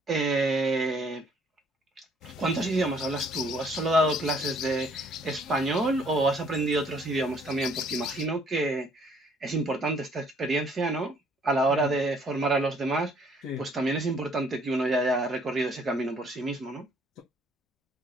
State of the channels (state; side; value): normal; both; correlation 0.62